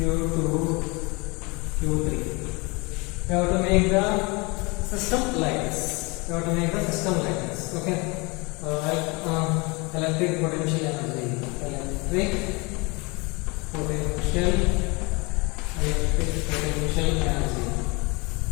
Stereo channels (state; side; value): quieter; right; 27.3 dB